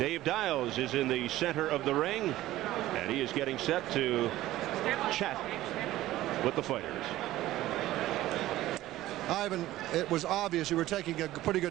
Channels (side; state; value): left; quieter; 15.4 dB